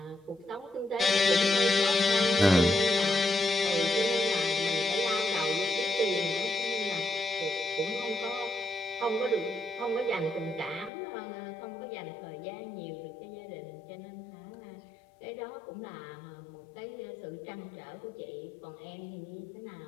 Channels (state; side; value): drops out; right; at 10.9 s